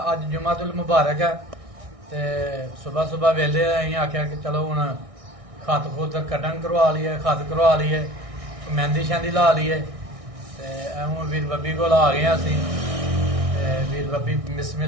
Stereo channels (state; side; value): late; left; 1.6 ms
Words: अज जुमातुल मुबारक है ते सुबह सुबह वेले अं आख्या कि चलो हुण खत खुत कटन करवा लीए खत करवा लीए मेहंदी शहंदी ला लीए ते हूँ वीर बब्बी को आ गए असी वीर बब्बी